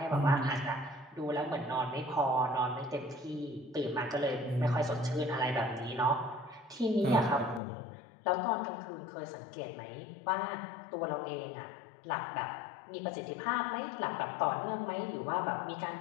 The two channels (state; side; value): drops out; right; at 7.6 s